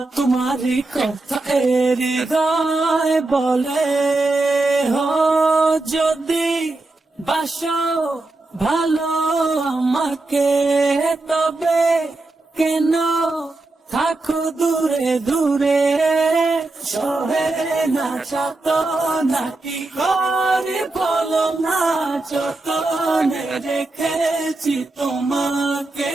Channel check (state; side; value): quieter; left; 3.1 dB